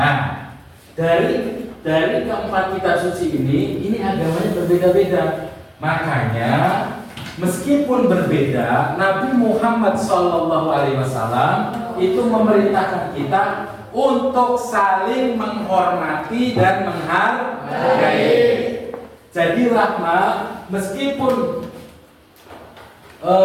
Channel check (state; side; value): identical; both; correlation 1.00